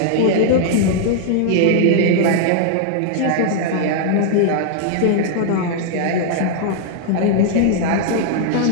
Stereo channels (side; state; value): both; different; correlation 0.00